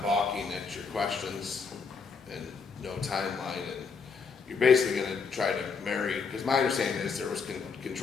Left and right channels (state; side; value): quieter; right; 5.2 dB